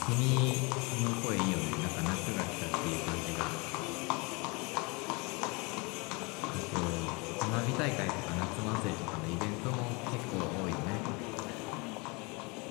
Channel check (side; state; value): right; quieter; 28.5 dB